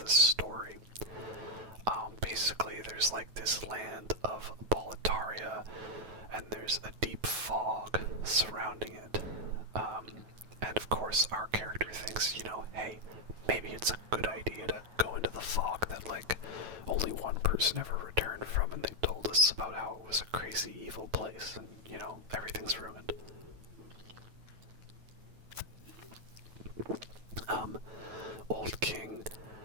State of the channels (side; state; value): left; late; 9.2 ms